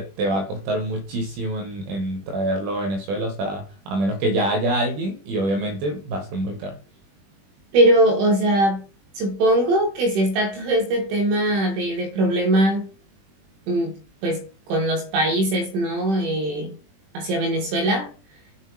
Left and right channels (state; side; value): late; left; 21 ms